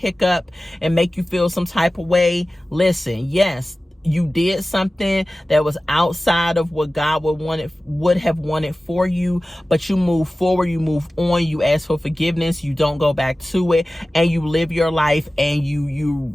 and make you feel some type of way, listen, yes, you did something that was outside of what God would have wanted for you, but you move forward, you move on, you ask for forgiveness, you don't go back to it, and you live your life, and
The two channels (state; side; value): normal; both; correlation 0.96